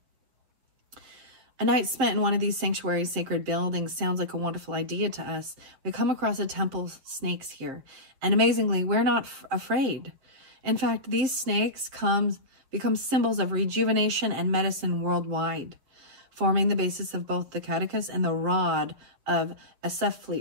A night spent in one of these sanctuary sacred buildings sounds like a wonderful idea to us. We come across a temple snakes here. And amazingly, we're not afraid. In fact, these snakes become symbols of rejuvenation and medicine worldwide, forming the basis of both the caduceus and the rod of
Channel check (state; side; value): late; left; 7.1 ms